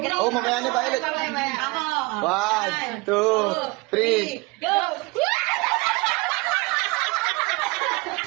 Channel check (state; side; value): quieter; left; 25.4 dB